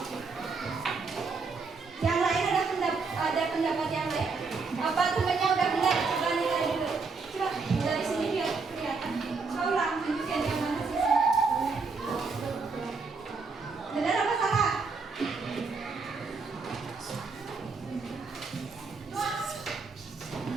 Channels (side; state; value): left; quieter; 4.5 dB